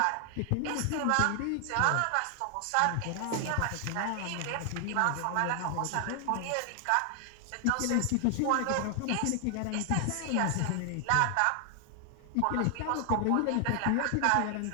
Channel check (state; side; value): different; both; correlation 0.00